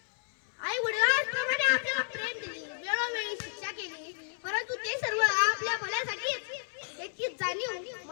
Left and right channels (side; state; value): right; silent; 57 dB below the other